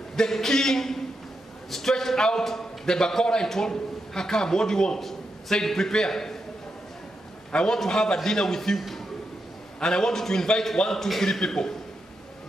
the king stretched out the bakora and told her, come, what do you want? Said, prepare. I want to have a dinner with you. And I want you to invite 1, 2, 3 people.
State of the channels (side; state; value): both; normal; correlation 0.85